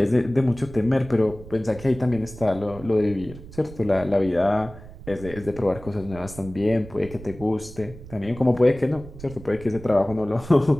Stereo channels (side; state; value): right; noise; rumble, 16 dB below the sound